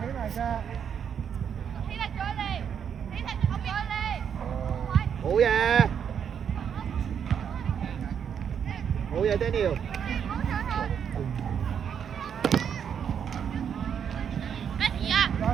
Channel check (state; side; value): quieter; left; 7.9 dB